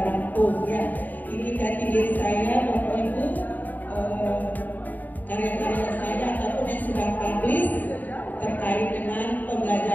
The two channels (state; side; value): late; right; 0.084 ms